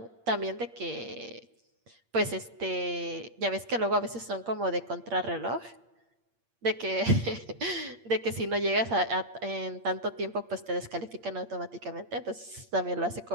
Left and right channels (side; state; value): left; late; 8.6 ms